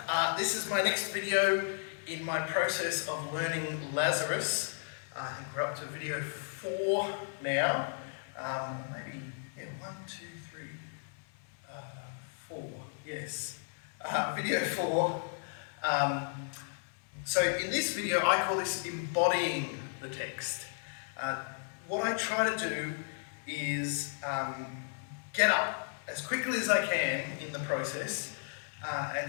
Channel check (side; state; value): right; silent; 55 dB below the other